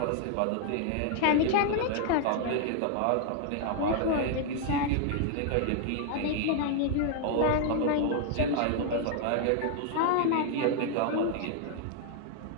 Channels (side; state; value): both; different; correlation 0.00